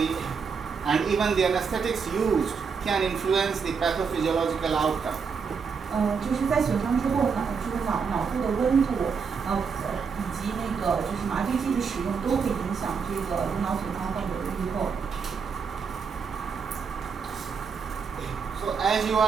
and even the anesthetics used can influence the pathophysiological outcome. 就是在损伤之后呢，这个脑部的温度，以及那个就是麻醉剂的使用都会影响这个颅脑损伤患者的预后。So as you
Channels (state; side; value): quieter; left; 5.8 dB